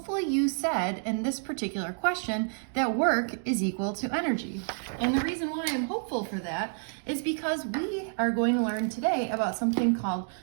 you said in this particular question that work is equal to energy. And the reason why I'm hopeful for that is because we are going to learn today about something called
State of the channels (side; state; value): left; silent; 58 dB below the other